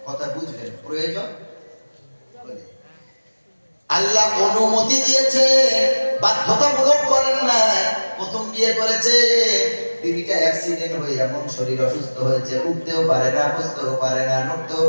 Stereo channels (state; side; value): inverted; both; correlation -1.00